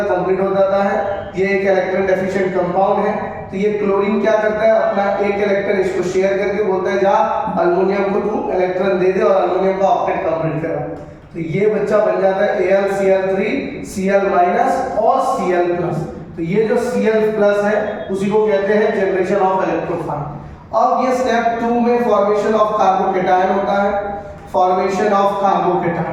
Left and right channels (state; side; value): identical; both; correlation 1.00